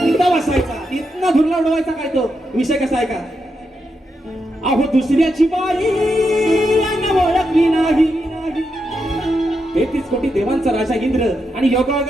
बसायचा इथनं धुरला उडवायचा काय तो विषय कसा आहे का. अहो दुसऱ्याची बाई ओळखली नाही 33 कोटी देवांचा राजा इंद्र आणि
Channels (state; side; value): normal; both; correlation 0.84